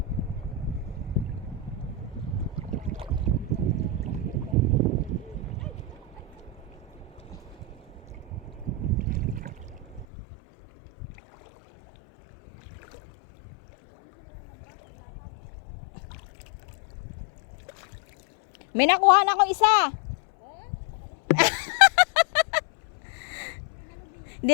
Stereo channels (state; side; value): drops out; right; at 10.1 s